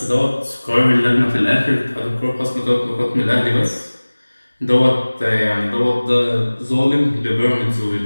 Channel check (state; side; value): inverted; both; correlation -1.00